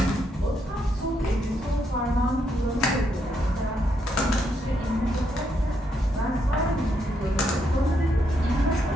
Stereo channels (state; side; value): normal; both; correlation 0.77